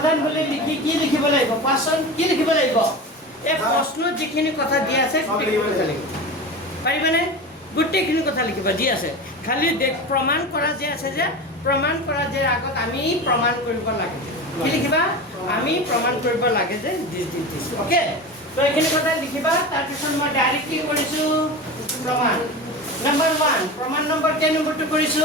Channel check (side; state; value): both; normal; correlation 0.28